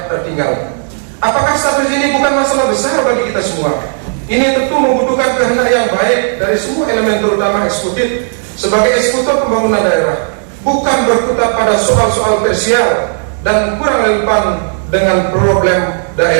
tertinggal. Apakah status ini bukan masalah besar bagi kita semua? Ini tentu membutuhkan kehendak yang baik dari semua elemen terutama eksekutif sebagai eksekutor pembangunan daerah, bukan berkutat pada soal-soal tersier dan kurang relevan dengan problem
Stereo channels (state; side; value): silent; left; digital silence